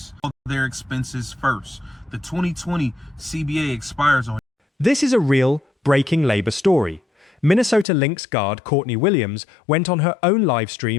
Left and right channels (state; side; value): drops out; right; at 7.9 s